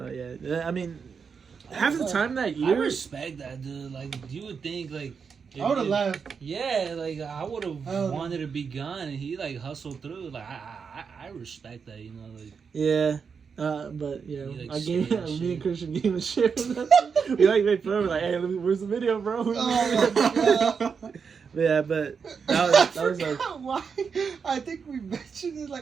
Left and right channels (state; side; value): quieter; left; 6.0 dB